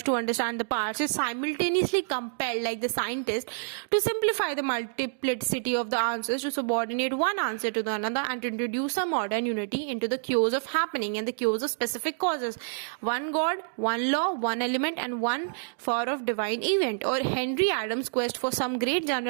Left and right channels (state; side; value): silent; left; digital silence